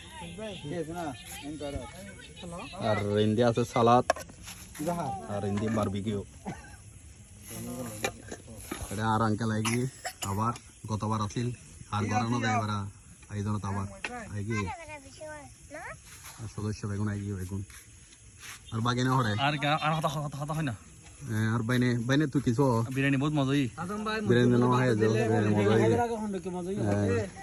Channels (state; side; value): identical; both; correlation 1.00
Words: আর ইন্ডিয়া আছে সালাদ আর ইন্ডিয়া বারবিকিউ এটা আর আঙ্কেল আইগি আবার গতবার আছিল আর গরানো দেয় এবার আয়োজনত আবার আইগি সদস্য বেগুন আইগি বেগুন আর বাকি না হরে আর কথা হয় না আর বাইনে তুই কিছু বিরিয়ানি বহুত মজা বিরিয়ানি না হয় যে বিরিয়ানি মজা হয়